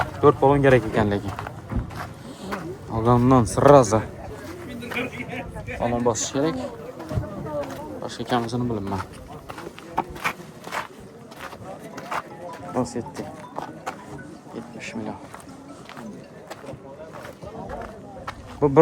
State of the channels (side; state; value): both; identical; correlation 1.00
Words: 4 balon kerak ekan lekin. Olgandan sırası. Balon bosish kerak. Boshqa ekanmisini bilmayman. Lacetti 70 milyon. Bu